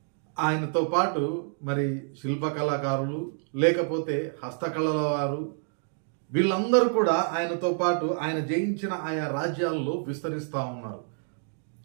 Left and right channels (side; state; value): left; silent; 59 dB below the other